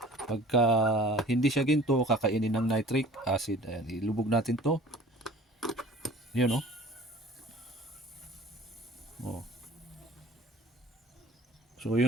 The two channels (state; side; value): normal; both; correlation 0.46